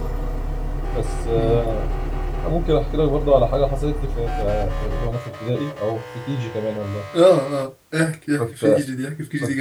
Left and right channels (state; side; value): identical; both; correlation 1.00